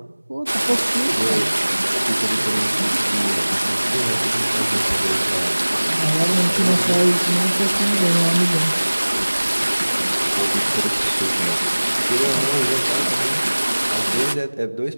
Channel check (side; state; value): both; inverted; correlation -1.00